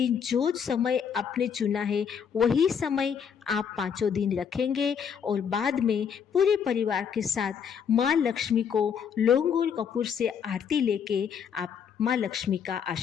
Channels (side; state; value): right; quieter; 7.3 dB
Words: जो समय आपने चुना है, वही समय आप 5 दिन रखेंगे, और बाद में पूरे परिवार के साथ माँ लक्ष्मी को लौंग और कपूर से आरती लेके आप माँ लक्ष्मी का